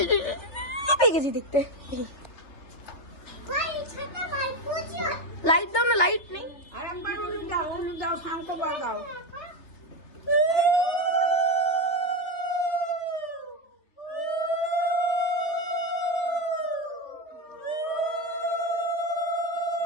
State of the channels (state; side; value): late; right; 3.3 ms